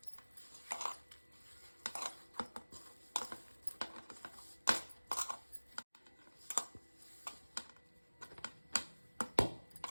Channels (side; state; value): both; inverted; correlation -1.00